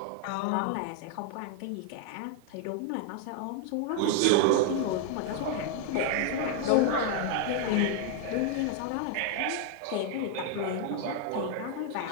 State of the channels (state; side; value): different; both; correlation 0.00